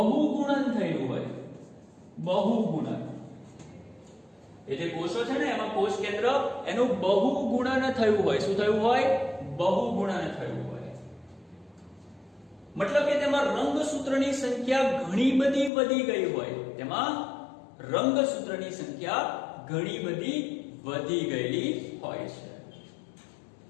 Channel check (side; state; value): right; drops out; at 15.7 s